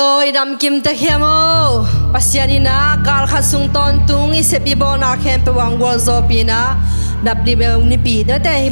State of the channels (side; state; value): both; inverted; correlation -1.00